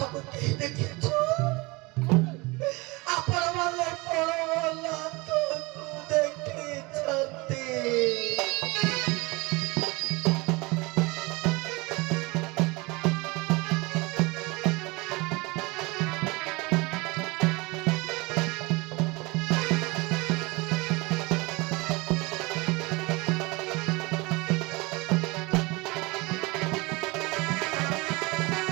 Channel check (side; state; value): left; quieter; 24.9 dB